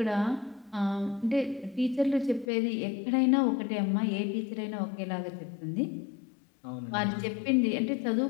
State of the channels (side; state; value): right; drops out; at 2.5 s